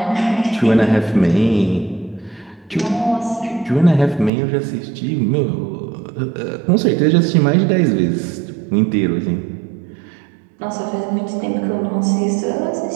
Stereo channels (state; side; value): drops out; left; at 4.3 s